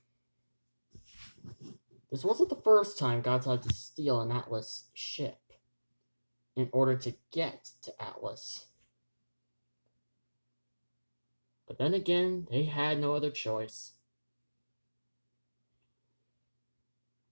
This wasn't the first time Godzilla had to steal an Atlas ship in order to get to Atlas. But then again, they had no other choice.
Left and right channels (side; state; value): both; inverted; correlation -1.00